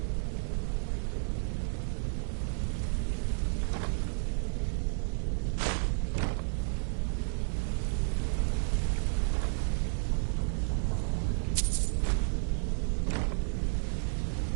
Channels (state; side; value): silent; left; digital silence